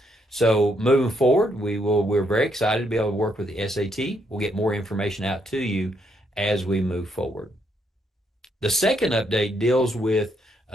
So moving forward, we're very excited to be able to work with the SAT. We'll get more information out to you as we move forward. The second update deals with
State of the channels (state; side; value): normal; both; correlation 0.75